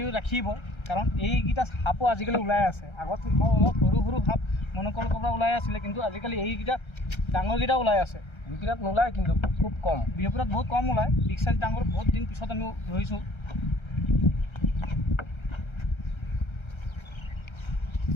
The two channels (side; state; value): right; late; 1.3 ms